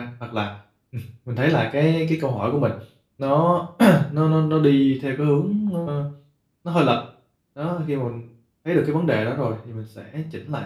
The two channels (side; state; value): both; identical; correlation 1.00